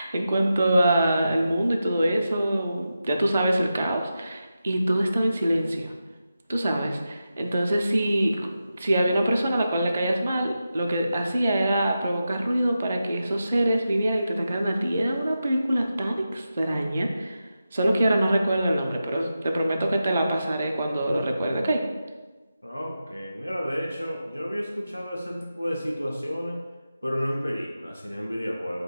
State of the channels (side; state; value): both; inverted; correlation -0.90